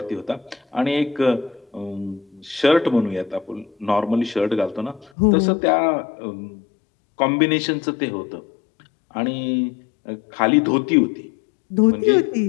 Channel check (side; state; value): right; drops out; at 5.1 s